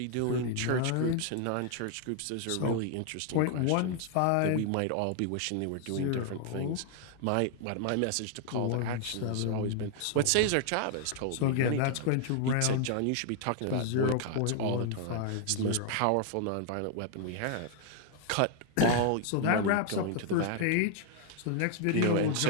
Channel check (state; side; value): different; both; correlation 0.00